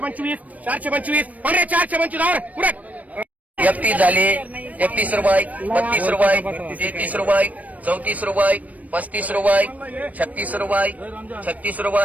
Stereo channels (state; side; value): late; left; 0.071 ms